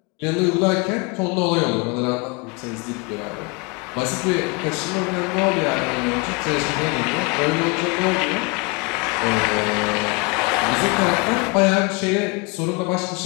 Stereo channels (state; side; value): quieter; right; 29.2 dB